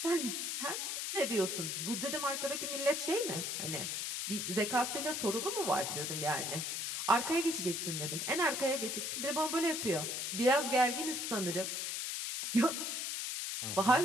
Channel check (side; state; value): left; noise; hiss, 2 dB below the sound